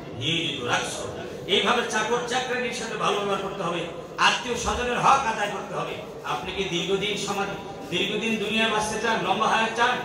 নিয়োজিত রাখছো। এইভাবে চাকর চাকরানির সাথে ভালো ব্যবহার করতে হবে, আত্মীয় স্বজনের হক আদায় করতে হবে। আপনি কি দীর্ঘদিন দুনিয়ায় বাঁচতে চান, লম্বা হায়াত চান?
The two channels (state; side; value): identical; both; correlation 1.00